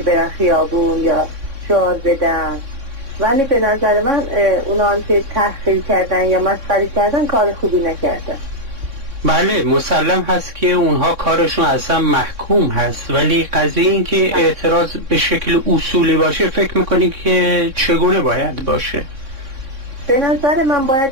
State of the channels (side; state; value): left; late; 3.6 ms